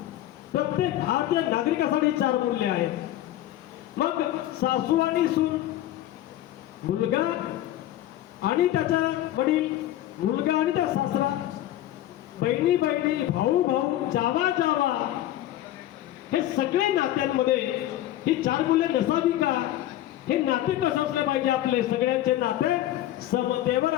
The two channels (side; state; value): right; quieter; 13.6 dB